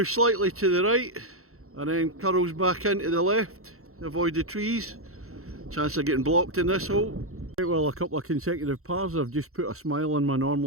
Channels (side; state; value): left; late; 0.63 ms